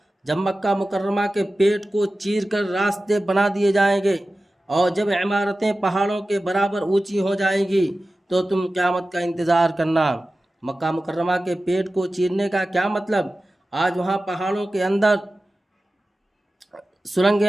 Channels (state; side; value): normal; both; correlation 0.95